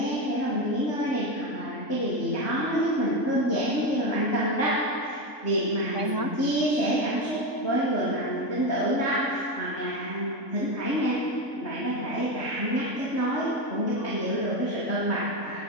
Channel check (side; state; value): right; late; 3.6 ms